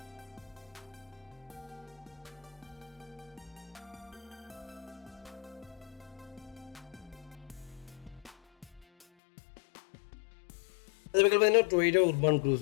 அது பார்த்தீங்கன்னா டொயோட்டா உர்பான்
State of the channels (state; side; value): drops out; right; at 9.1 s